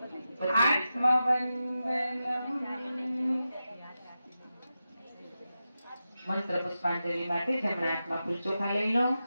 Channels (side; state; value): both; inverted; correlation -0.91